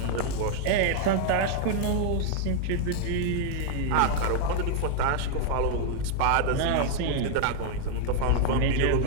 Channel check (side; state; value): both; different; correlation 0.00